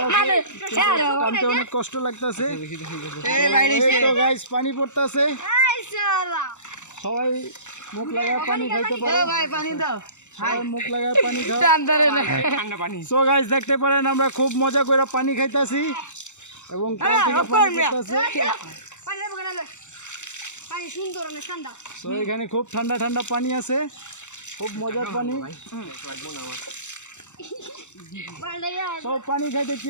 অনেক কষ্ট লাগতেছে তো গাইস। পানি পড়তেছে, সবাই মুখ লাগায় পানি খাইতে পারে, মুখ লাগায় পানি খায়। সো গাইস দেখতে পারেন আমরা খুব মজা করে পানি খাইতেছি এবং সো এখানে খুব ঠান্ডা ঠান্ডা পানি আছে, খুব মজার পানি। সব পানি খাইতে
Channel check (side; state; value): right; late; 0.84 ms